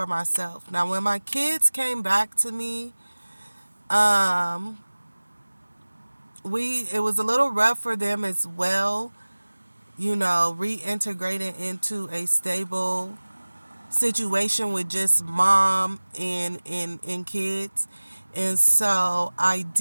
myself. Now, when my kids came back to me, it was a little rough for them as well, reintegrating into a stable situation with just mom and kids. And so I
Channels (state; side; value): inverted; both; correlation -1.00